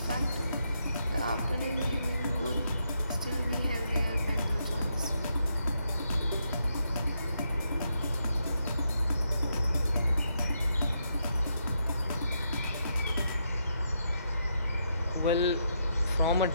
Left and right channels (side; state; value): both; inverted; correlation -0.80